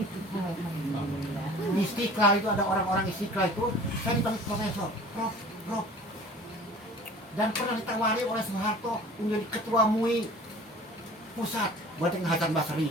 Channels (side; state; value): both; normal; correlation 0.44